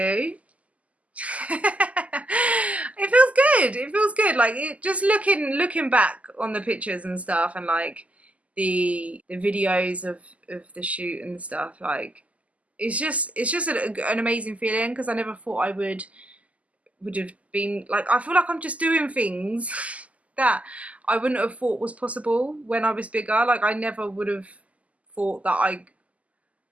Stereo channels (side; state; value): left; late; 0.070 ms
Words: It feels good. It feels good. Like just looking back on the pictures and stuff, and like the videos of the shoot and stuff. Like it's just an amazing feeling, because I never thought I would have been like, I feel like I'm just doing things that I wouldn't have thought was possible when I was bigger. Like I never would have thought that